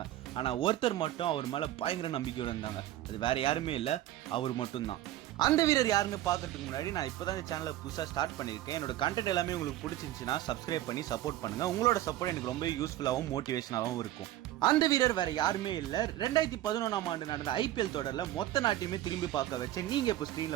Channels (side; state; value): left; quieter; 14.2 dB